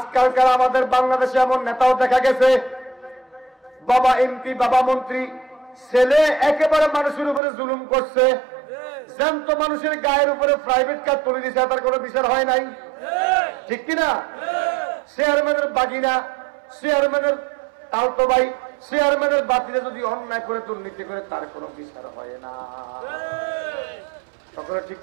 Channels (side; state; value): left; drops out; at 7.4 s